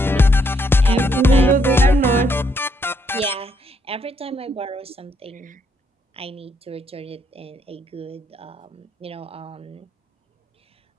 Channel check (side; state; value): both; normal; correlation 0.74